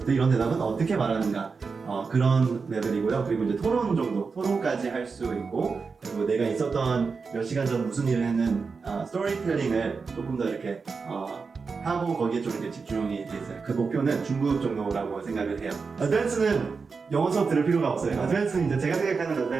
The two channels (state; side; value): quieter; left; 4.9 dB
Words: 때 이런 대답은 어떻게 말하는가 그런 레벨이고요. 그리고 이제 토론까지 할 수 있고 그리고 내가 있었던 몇 시간 전 무슨 일을 했는 스토리텔링을 조금 더 이렇게 하고 거기에 좀 이렇게 집중이 돼 있어요. 그 목표는 중급 정도라고 생각을 해요. 어드밴스는 영어 수업 들을 필요가 없어요. 어드밴스는 이제 제가 생각하는